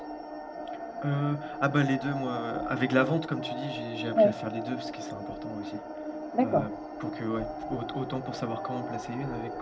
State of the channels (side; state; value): both; identical; correlation 1.00